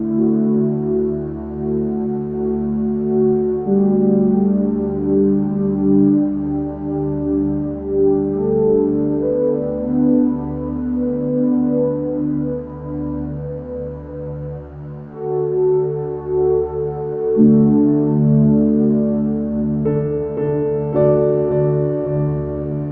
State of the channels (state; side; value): identical; both; correlation 1.00